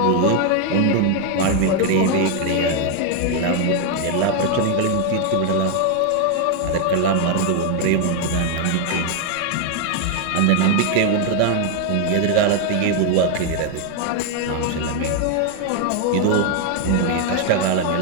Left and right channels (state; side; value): different; both; correlation 0.01